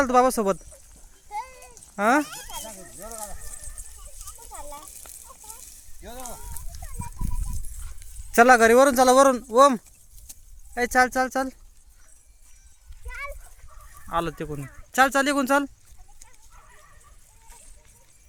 तू बाबा सोबत? हा चला घरी वरून चला वरून. ओम ए चाल चाल चाल आलो तिकून. चाल चाल इकून चाल.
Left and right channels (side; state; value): both; identical; correlation 1.00